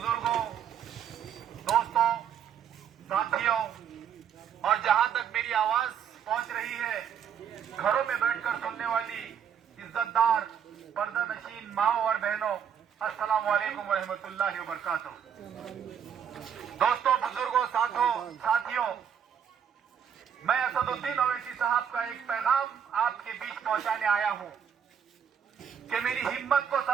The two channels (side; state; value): left; quieter; 8.2 dB